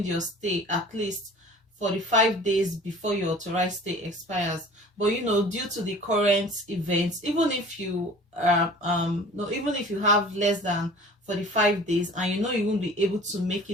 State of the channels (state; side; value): normal; both; correlation 0.44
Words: your stay at least 45 days before your authorized stay expires. But due to the current events, even if you have less than 45 days and you won't be able to make